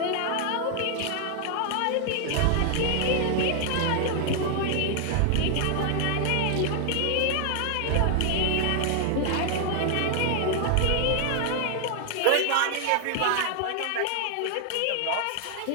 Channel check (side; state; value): both; different; correlation 0.00